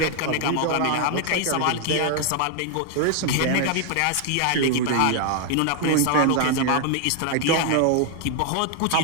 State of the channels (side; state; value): both; different; correlation 0.00